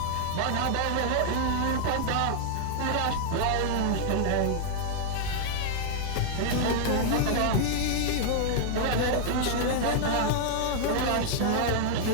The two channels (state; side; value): different; both; correlation -0.01